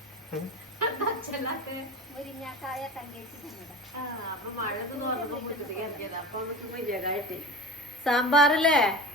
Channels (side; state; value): both; normal; correlation 0.31